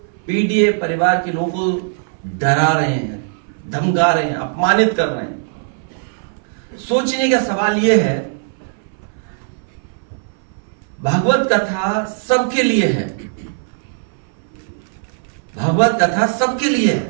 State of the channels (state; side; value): silent; left; 61 dB below the other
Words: पीडीए परिवार के लोगों को डरा रहे हैं, धमका रहे हैं, अपमानित कर रहे हैं। सोचने का सवाल यह है, भागवत कथा सबके लिए है, भागवत कथा सबके लिए